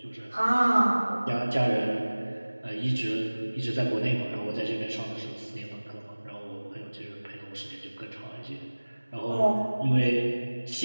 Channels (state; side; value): inverted; both; correlation -1.00